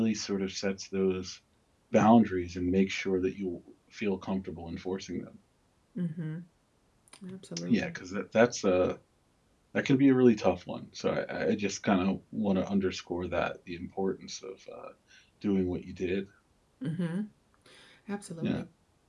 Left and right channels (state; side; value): identical; both; correlation 1.00